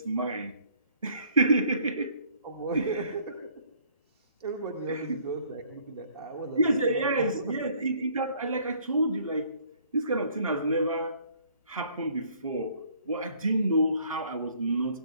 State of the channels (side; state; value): both; inverted; correlation -0.60